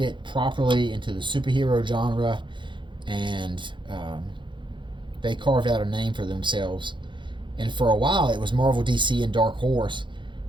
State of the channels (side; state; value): left; late; 0.23 ms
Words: properly into the superhero genre, and they carved out a name for themselves. And for a while, it was Marvel, DC, and Dark Horse.